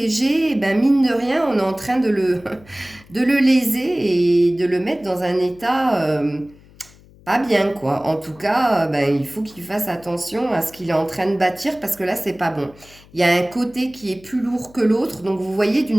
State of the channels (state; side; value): noise; left; hum, 25 dB below the sound